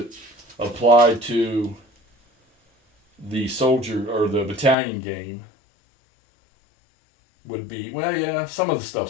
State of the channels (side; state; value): right; drops out; at 4.8 s